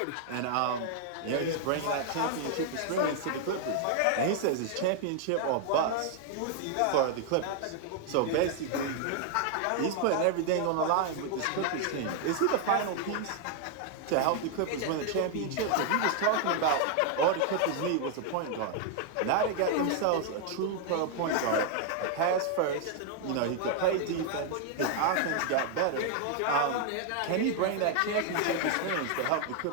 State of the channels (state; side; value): different; both; correlation 0.00